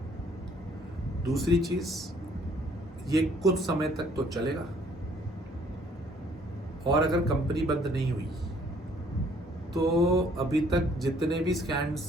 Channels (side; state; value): both; normal; correlation 0.61